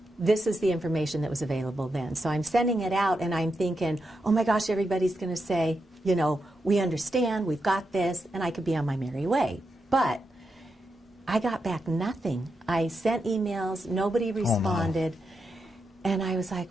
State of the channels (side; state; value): both; normal; correlation 0.86